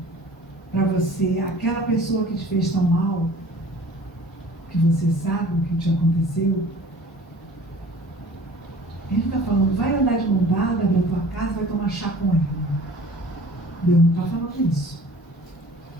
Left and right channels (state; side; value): normal; both; correlation 0.47